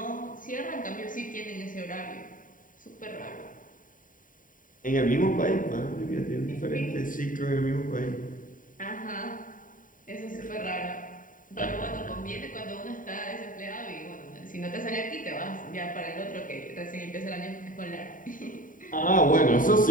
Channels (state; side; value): late; right; 0.39 ms